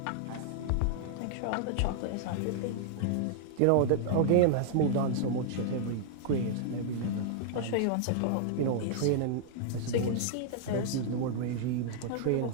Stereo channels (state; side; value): different; both; correlation -0.01